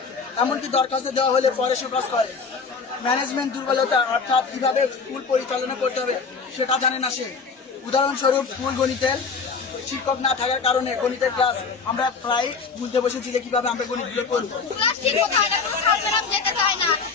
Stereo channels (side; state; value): right; quieter; 5.0 dB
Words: এমনকি দরখাস্ত দেওয়া হলে পরে সুপারিশ করে। ম্যানেজমেন্ট দুর্বলতা, অর্থাৎ কিভাবে স্কুল পরিচালনা করতে হবে সেটা জানে না সে। উদাহরণস্বরূপ, স্কুল গণিতের শিক্ষক না থাকার কারণে গণিতের ক্লাস আমরা প্রায় ভুলতে বসেছি যে কিভাবে আমরা গণিতগুলো করবো।